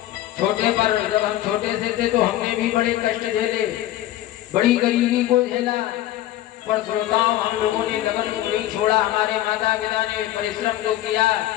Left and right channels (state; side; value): quieter; right; 14.0 dB